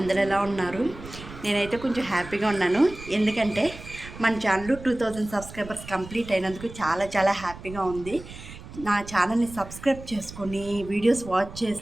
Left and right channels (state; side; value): noise; right; rumble, 14 dB below the sound